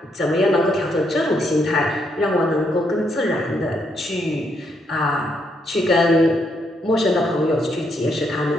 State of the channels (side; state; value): both; normal; correlation 0.76